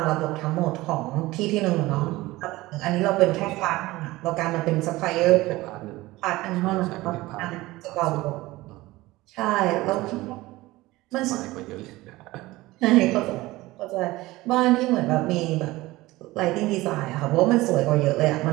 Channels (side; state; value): left; quieter; 19.1 dB